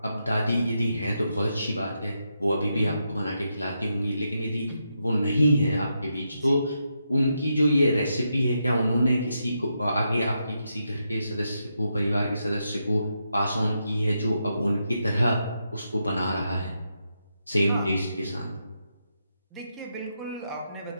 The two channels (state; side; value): inverted; both; correlation -0.83